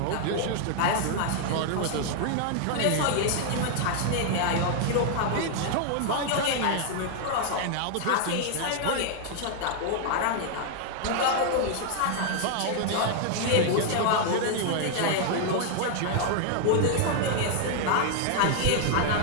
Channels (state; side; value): different; both; correlation 0.00